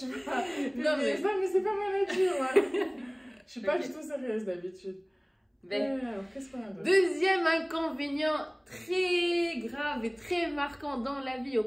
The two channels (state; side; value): identical; both; correlation 1.00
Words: vas publier ça, mais c'est pas ma nature. Je suis pas du tout sérieuse d'habitude. Qu'est-ce qu'on a d'autre? Deuxième inconvénient très grave et très marquant dans la vie au